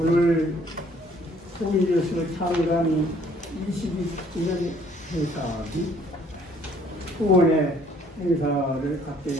통일뉴스 창간 22주년 행사 및 후원의 행사를 갖게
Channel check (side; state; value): both; normal; correlation 0.60